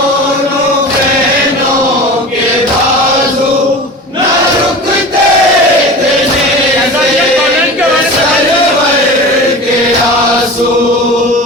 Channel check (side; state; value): both; normal; correlation 0.34